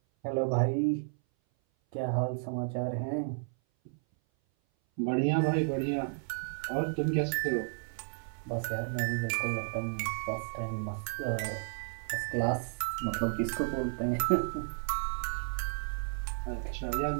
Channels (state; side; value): silent; left; 56 dB below the other